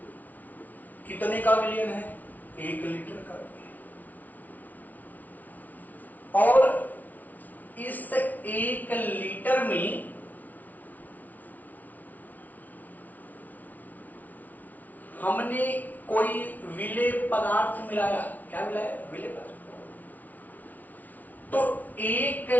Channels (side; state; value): right; late; 0.077 ms